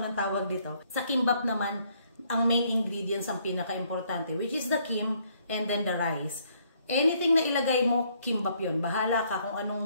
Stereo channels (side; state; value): both; inverted; correlation -0.68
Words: anong tawag dito. Sa kimbap naman, ang main ingredients ang pinaka-importante, which is the kim and then the rice. Anything na ilagay mo, kimbap yun. Bahala ka kung